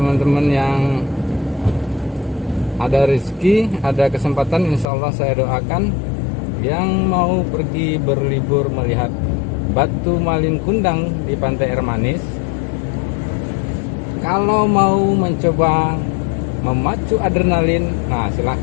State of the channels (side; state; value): right; drops out; at 4.9 s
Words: yang ada rezeki, ada kesempatan, insya Allah saya doakan yang mau pergi berlibur melihat batu malin kundang di Pantai Air Manis, kalau mau mencoba memacu adrenalin, nah